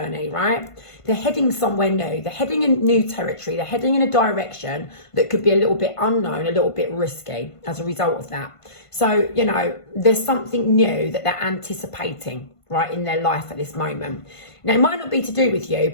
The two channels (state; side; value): late; right; 1.5 ms